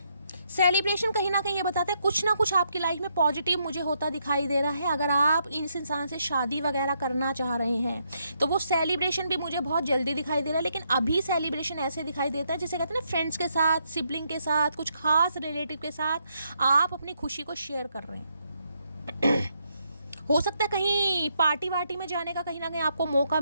सेलिब्रेशन कहीं ना कहीं ये बताता है कुछ ना कुछ आपकी लाइफ में पॉजिटिव मुझे होता दिखाई दे रहा है। अगर आप इस इंसान से शादी वगैरह करना चाह रहे हैं तो वो सेलिब्रेशन भी मुझे बहुत जल्दी दिखाई दे रहा है। लेकिन अभी सेलिब्रेशन ऐसे दिखाई देता है जिसे कहते हैं ना, फ्रेंड्स के साथ, सिबलिंग के साथ, कुछ खास रिलेटिव के साथ आप अपनी खुशी को शेयर कर रहे हैं। हो सकता है कहीं पार्टी वार्टी में जाने का कहीं ना कहीं आपको मौका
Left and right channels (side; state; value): both; inverted; correlation -0.77